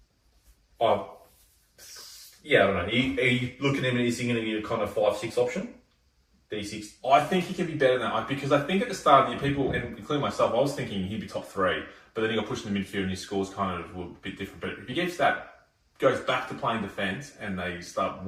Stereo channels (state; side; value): identical; both; correlation 1.00